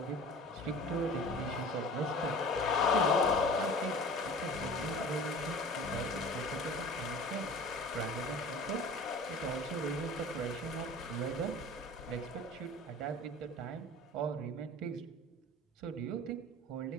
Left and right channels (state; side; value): normal; both; correlation 0.41